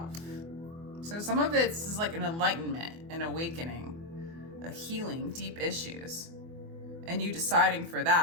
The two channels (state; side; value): late; left; 24 ms